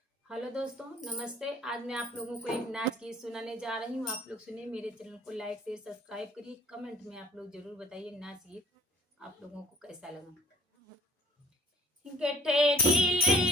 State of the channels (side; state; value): both; normal; correlation 0.50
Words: Hello दोस्तों, नमस्ते। आज मैं आप लोगों को एक नाच गीत सुनाने जा रही हूँ। आप लोग सुनिए, मेरे चैनल को लाइक शेयर सब्सक्राइब करिए। कमेंट में आप लोग जरूर बताइए नाच गीत आप लोगों को कैसा लगा। गठरी